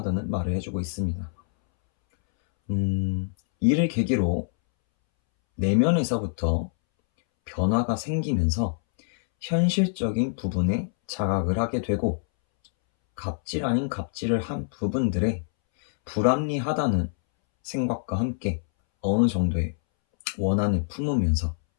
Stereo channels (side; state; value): right; silent; 61 dB below the other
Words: 말을 해주고 있습니다. 이를 계기로 내면에서부터 변화가 생기면서 현실적인 부분에 자각을 하게 되고, 갑질 아닌 갑질을 한 부분들에 불합리하다는 생각과 함께 어느 정도의 원한을 품으면서